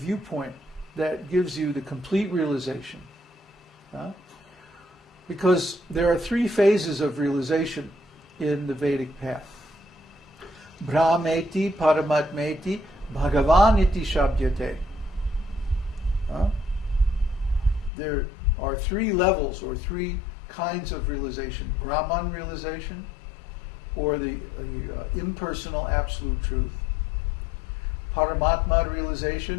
that gives you the complete realization. Because there are 3 phases of realization in the Vedic path. Brahmeti, Paramatmeti, Bhagavaniti Shabdyate. There are 3 levels or 3 kinds of realization. Brahman realization, or the impersonal absolute truth. Paramatma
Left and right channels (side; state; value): right; drops out; at 17.9 s